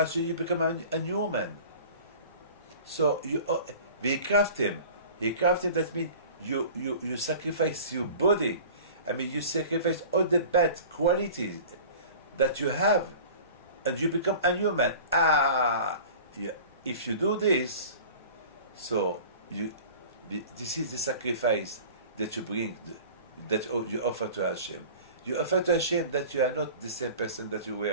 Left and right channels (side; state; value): both; inverted; correlation -0.41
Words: so you become a new man. So they craft him. That means you sacrifice your body. I mean, you sacrifice all the bad qualities that you have, and you become a new man. If you do this, so this is the sacrifice that you bring, that you offer to Hashem. You offer to Hashem that you are not the same person that you